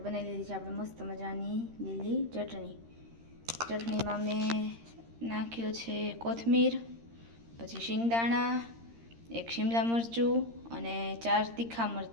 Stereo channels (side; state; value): left; late; 13 ms